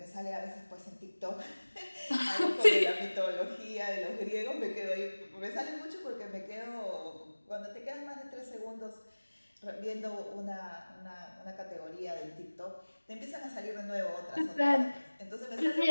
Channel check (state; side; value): inverted; both; correlation -1.00